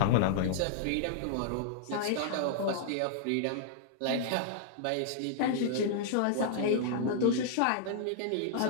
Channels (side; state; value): both; different; correlation -0.01